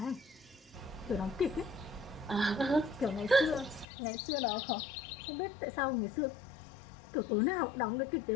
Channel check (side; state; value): right; drops out; at 3.9 s